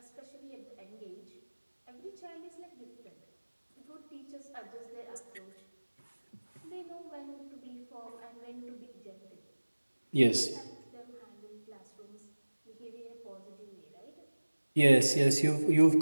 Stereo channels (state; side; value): inverted; both; correlation -1.00